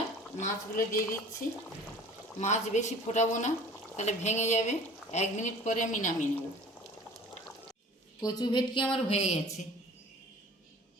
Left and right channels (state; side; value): normal; both; correlation 0.46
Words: মাছগুলো দিয়ে দিচ্ছি। মাছ বেশি ফোটাবো না, তাহলে ভেঙে যাবে। 1 মিনিট পরে আমি নামিয়ে নেব। কচু ভেটকি আমার হয়ে গেছে।